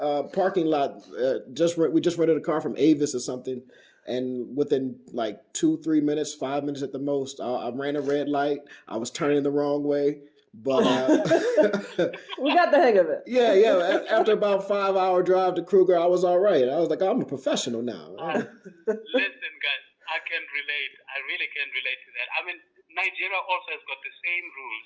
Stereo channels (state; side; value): identical; both; correlation 1.00